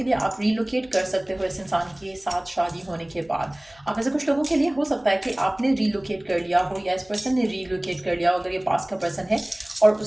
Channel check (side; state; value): left; noise; hum, 29 dB below the sound